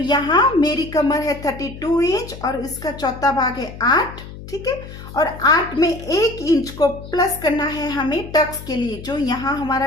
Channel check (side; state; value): left; noise; hum, 13 dB below the sound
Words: मेरी कमर है 32 इंच और इसका चौथा भाग है 8, ठीक है। और 8 में 1 इंच को प्लस करना है हमें टक्स के लिए। जो यहाँ